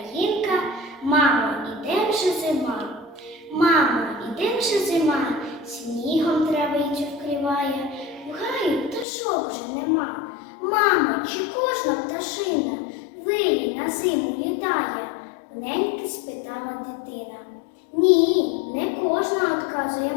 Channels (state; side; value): drops out; right; at 9.1 s